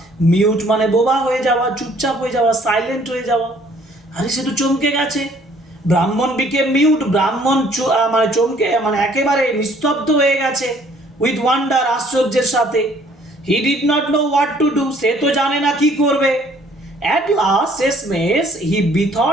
mute মানে বোবা হয়ে যাওয়া, চুপচাপ হয়ে যাওয়া, সাইলেন্ট হয়ে যাওয়া, আরে সে তো চমকে গেছে। ব্রাহ্মণ became mute, ব্রাহ্মণ মানে চমকে মানে একেবারে নিস্তব্ধ হয়ে গেছে, with wonder আশ্চর্যের সাথে। He did not know what to do, সে তো জানে না কি করবে। At last, শেষমেশ, he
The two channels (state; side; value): normal; both; correlation 0.60